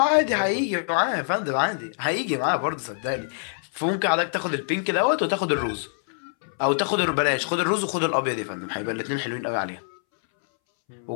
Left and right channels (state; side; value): silent; right; 62 dB below the other